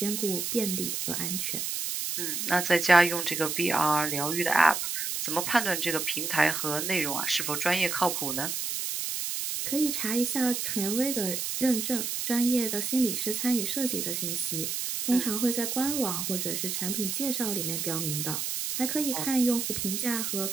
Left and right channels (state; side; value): noise; right; hiss, 2 dB below the sound